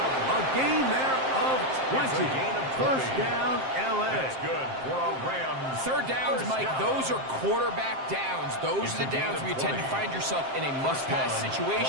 A gain there of 20. 1st down, L.A. That's good for a Rams. 3rd downs, Mike, those are quarterback downs. Those are the downs where you tend to find yourself in a must-pass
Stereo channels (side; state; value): left; late; 7.6 ms